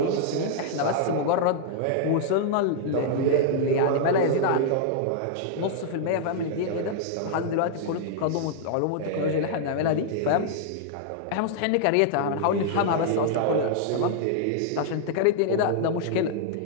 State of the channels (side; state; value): both; different; correlation -0.01